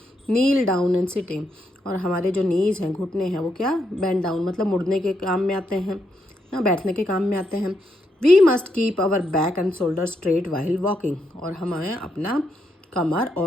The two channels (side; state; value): both; normal; correlation 0.80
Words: kneel down and sitting, और हमारे जो नीज हैं, घुटने हैं, वो क्या, बेंड डाउन मतलब मुड़ने के काम में आते हैं ना, बैठने के काम में आते हैं। We must keep our back and shoulder straight while walking, और हमें अपना कमर